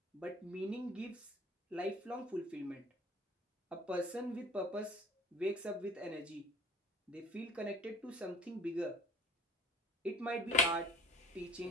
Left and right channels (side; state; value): both; normal; correlation 0.48